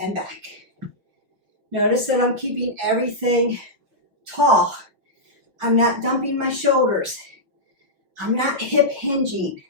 back. Notice that I'm keeping everything tall. I'm not dumping my shoulders. I'm not hip hinging.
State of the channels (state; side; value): late; left; 5.7 ms